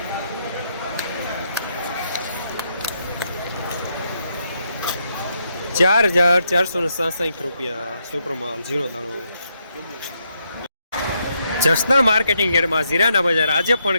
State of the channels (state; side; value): inverted; both; correlation -0.78